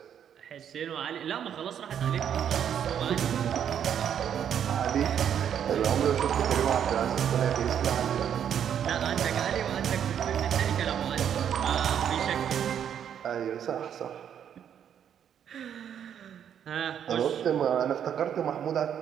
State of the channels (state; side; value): quieter; left; 9.0 dB